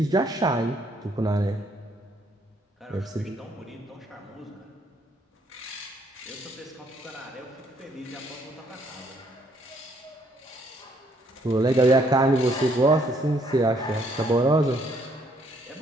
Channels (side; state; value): both; normal; correlation 0.68